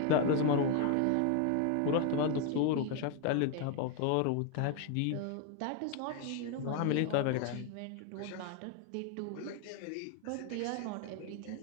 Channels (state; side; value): different; both; correlation 0.00